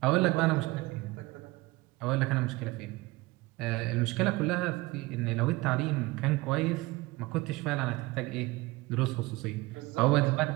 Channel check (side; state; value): left; quieter; 21.3 dB